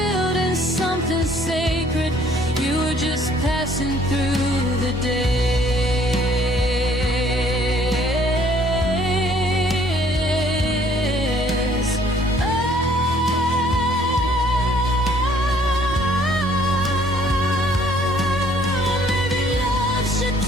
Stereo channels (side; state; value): both; normal; correlation 0.60